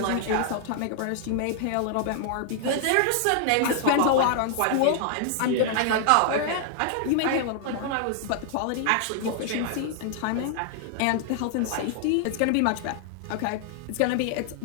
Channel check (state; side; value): different; both; correlation 0.00